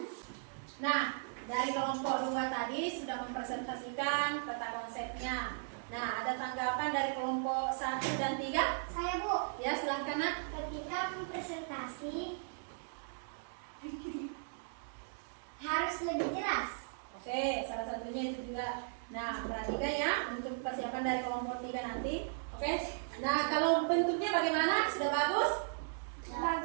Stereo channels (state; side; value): silent; left; digital silence